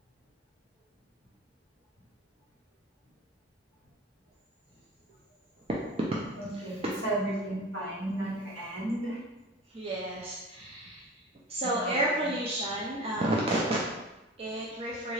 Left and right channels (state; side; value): normal; both; correlation 0.37